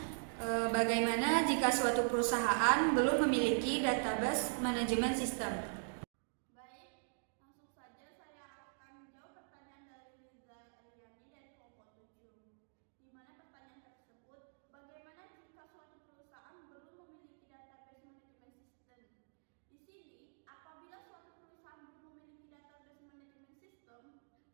bagaimana jika suatu perusahaan belum memiliki database manajemen sistem? Baik, langsung saja saya akan menjawab pertanyaan dari Riza Eliani dari kelompok 7. Di mana pertanyaan tersebut, bagaimana jika suatu perusahaan belum memiliki database manajemen sistem? Di sini, apabila suatu perusahaan belum memiliki database manajemen sistem,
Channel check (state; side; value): silent; left; digital silence